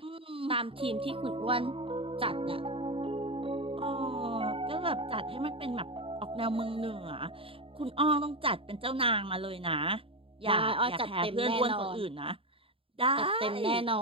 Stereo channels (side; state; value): left; late; 0.27 ms